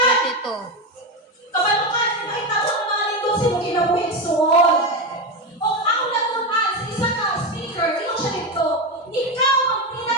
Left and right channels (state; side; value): normal; both; correlation 0.14